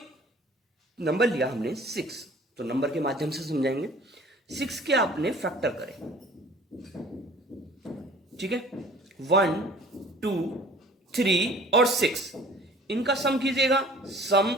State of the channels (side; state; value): both; normal; correlation 0.49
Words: नंबर लिया हमने 6, तो नंबर के माध्यम से समझाएंगे। 6 के आपने फैक्टर करें, ठीक है, 1, 2, 3 और 6, इनका सम कीजिएगा। सम